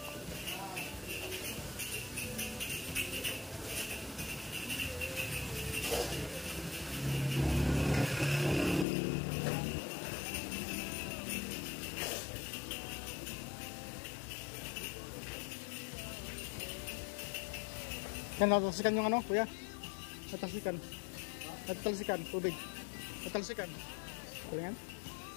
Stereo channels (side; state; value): right; drops out; at 8.8 s